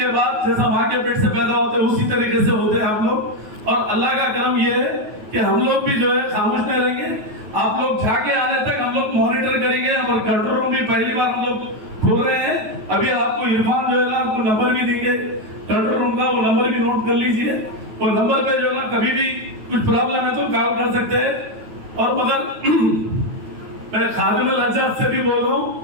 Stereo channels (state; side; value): late; left; 9.3 ms